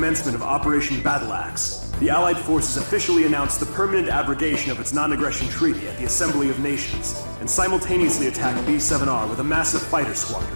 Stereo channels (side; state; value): both; inverted; correlation -1.00